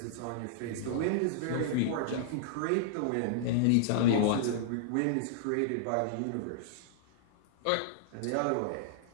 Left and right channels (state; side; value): different; both; correlation -0.02